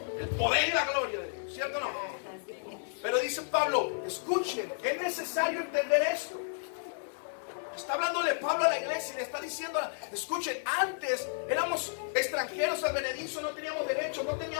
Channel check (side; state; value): right; silent; digital silence